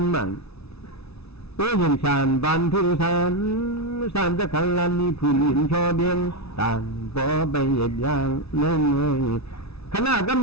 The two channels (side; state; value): right; late; 0.79 ms